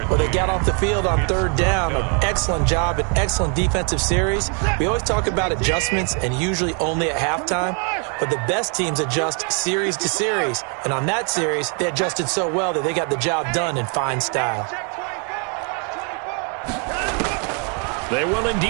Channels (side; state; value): left; quieter; 38.1 dB